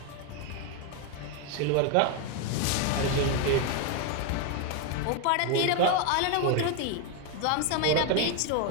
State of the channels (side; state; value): both; different; correlation 0.01